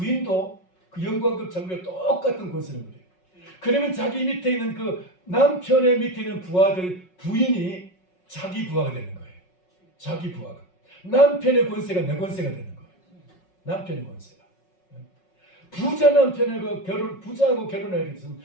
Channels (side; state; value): right; late; 5.4 ms